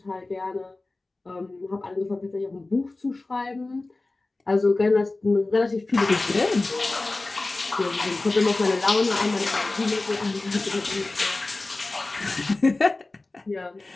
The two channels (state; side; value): quieter; right; 3.2 dB